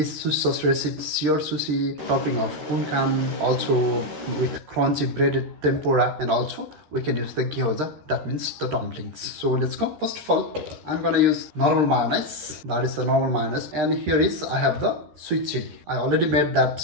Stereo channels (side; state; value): left; late; 13 ms